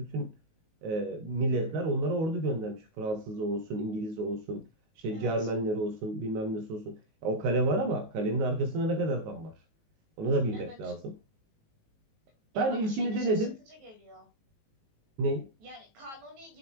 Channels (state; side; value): late; left; 19 ms